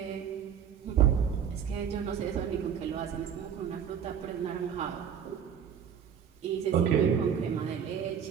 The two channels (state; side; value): quieter; left; 8.1 dB